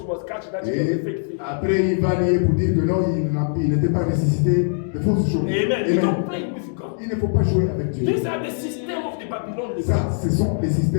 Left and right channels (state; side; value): silent; right; digital silence